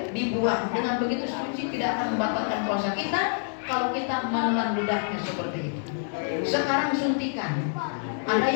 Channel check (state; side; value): silent; right; 60 dB below the other